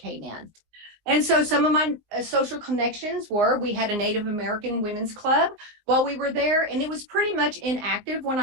in. And so some of my social connections were, we had a Native American women's club while we were there, and it was pretty much inactive when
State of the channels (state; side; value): late; left; 19 ms